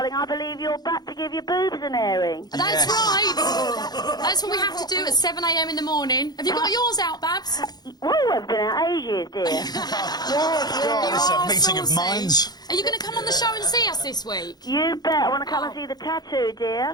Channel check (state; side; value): late; right; 0.19 ms